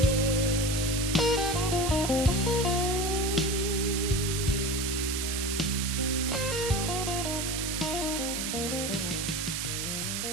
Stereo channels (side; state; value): right; noise; hiss, 2 dB below the sound